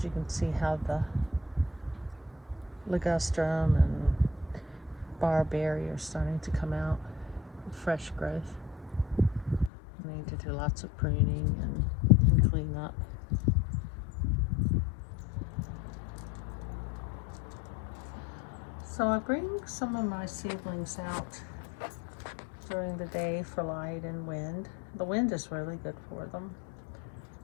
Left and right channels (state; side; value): drops out; right; at 9.7 s